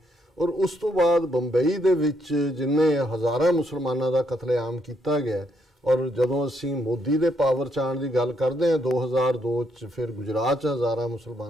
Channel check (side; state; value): both; normal; correlation 0.75